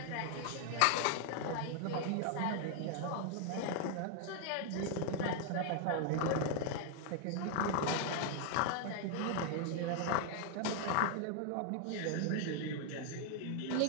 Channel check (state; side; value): different; both; correlation 0.00